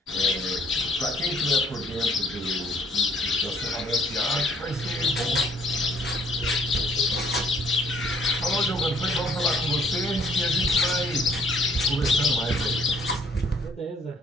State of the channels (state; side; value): normal; both; correlation 0.62